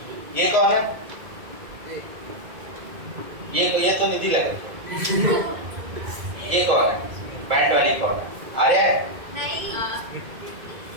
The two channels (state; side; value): late; left; 2.1 ms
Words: ये कौन है, ये तो निधि लग रही है। ये कौन है, बैंड वाली कौन है, आर्या नहीं,